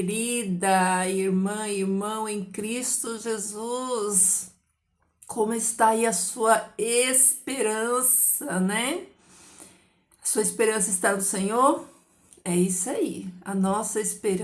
irmã, irmão em Cristo Jesus? Como está aí a sua esperança, né? Sua esperança está no Senhor? É isso aí. A nossa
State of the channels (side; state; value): both; identical; correlation 1.00